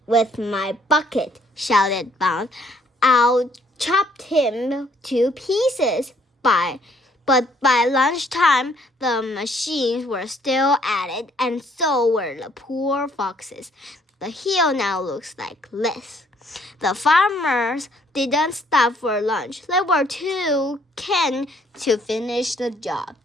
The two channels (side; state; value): both; normal; correlation 0.64